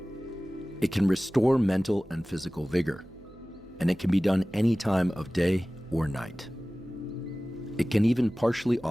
It can restore mental and physical vigor, and it can be done any time of day or night. It can even partially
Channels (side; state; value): right; noise; hum, 24 dB below the sound